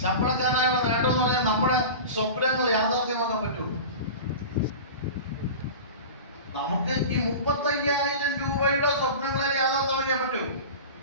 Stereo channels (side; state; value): both; inverted; correlation -0.32